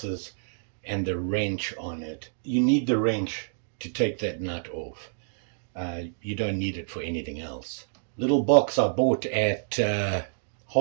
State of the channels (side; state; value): left; silent; digital silence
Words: and the wrench on it. You need the wrench to take that nut off. You don't need it for anything else. Little box I bought at